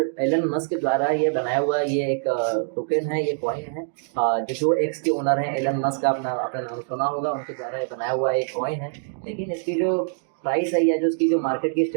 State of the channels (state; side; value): silent; left; digital silence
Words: एलन मस्क के द्वारा ये बनाया हुआ ये एक टोकन है, ये कॉइन है। जो एक्स के ओनर हैं एलन मस्क, आपने नाम सुना होगा, उनके द्वारा ये बनाया हुआ एक कॉइन है। लेकिन इसकी जो प्राइस है या जो इसकी जो मार्केट की